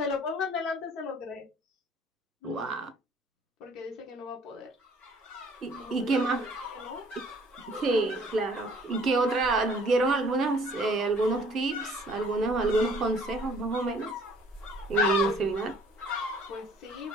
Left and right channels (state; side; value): normal; both; correlation 0.56